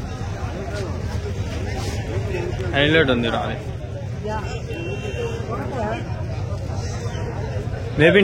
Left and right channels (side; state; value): both; identical; correlation 1.00